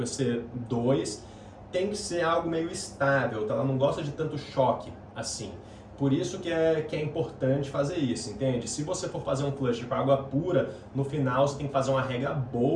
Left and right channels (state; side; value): identical; both; correlation 1.00